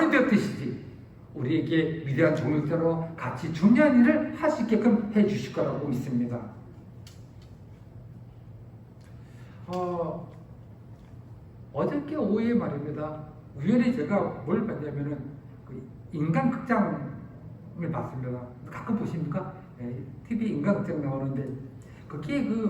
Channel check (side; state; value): both; identical; correlation 1.00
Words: 되었듯이 우리에게 위대한 동역자로 같이 중요한 일을 할 수 있게끔 해주실 거라고 믿습니다. 어저께 오후에 말입니다. 우연히 제가 뭘 봤냐면은 그 인간극장을 봤습니다. 가끔 보십니까? TV 인간극장 나오는데 거기에